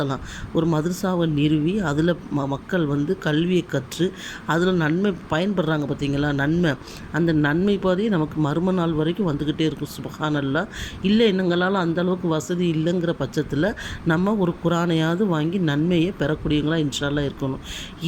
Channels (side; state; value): both; identical; correlation 1.00